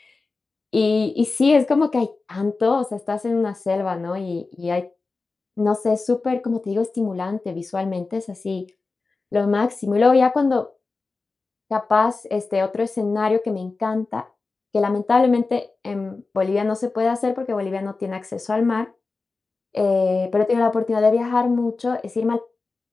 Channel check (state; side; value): quieter; right; 3.9 dB